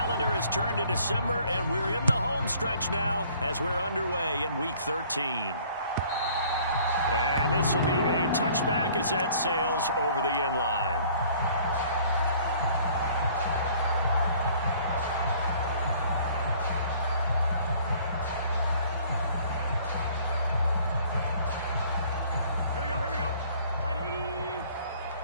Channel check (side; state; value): both; inverted; correlation -0.56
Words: has turned to December, and we're in the home stretch now as we're underway in Week 13. And this will be a touchback as that sails over the end line. Here we go. Right 80.